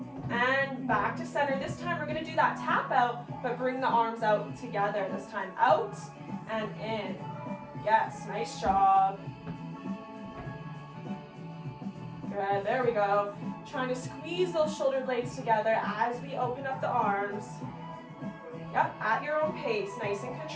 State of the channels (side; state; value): both; identical; correlation 1.00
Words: and back to center. This time we're gonna do that tap out, but bring the arms out together. This time out and in. Yes, nice job. Good, there we go. Trying to squeeze those shoulder blades together as we open up the arms. Yep, at your own pace, nice and